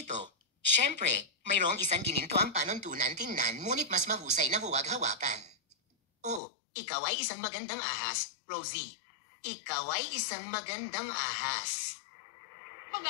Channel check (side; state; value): right; drops out; at 6.4 s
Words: Siyempre, mayroong isang gininto ang panuntunan tingnan ngunit mas mahusay na huwag hawakan. Oh, ikaw ay isang magandang ahas, Rosie. Ikaw ay isang magandang ahas. Mga